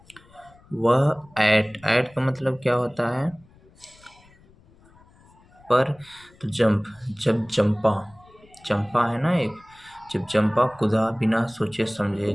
वह एट का मतलब क्या होता है? पर. तो जब चंपा है ना एक, जब चंपा कूदा बिना सोचे समझे,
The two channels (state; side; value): noise; left; rumble, 28 dB below the sound